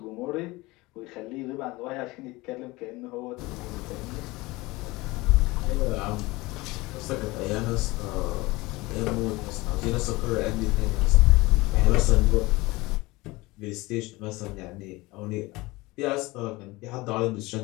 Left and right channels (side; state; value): right; quieter; 21.7 dB